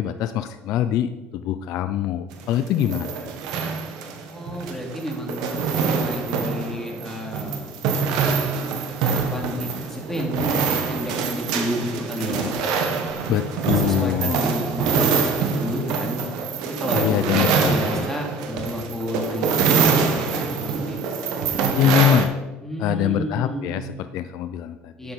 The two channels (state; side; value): normal; both; correlation 0.42